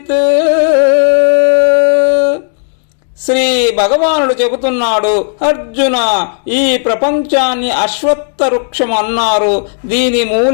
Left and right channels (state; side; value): silent; right; digital silence